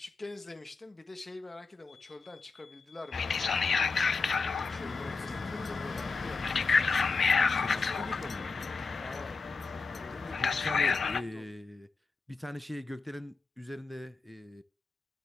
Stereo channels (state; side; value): quieter; right; 4.4 dB